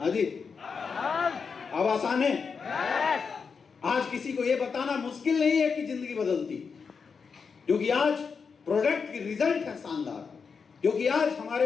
जी, अब आसान है। आज किसी को यह बताना मुश्किल नहीं है कि जिंदगी बदलती, क्योंकि आज प्रोडक्ट की रिजल्ट है शानदार, क्योंकि आज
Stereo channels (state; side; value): quieter; right; 5.6 dB